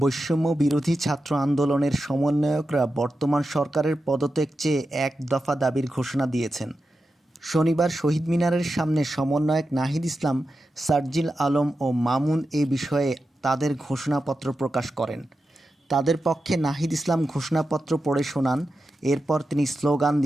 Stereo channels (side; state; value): both; normal; correlation 0.90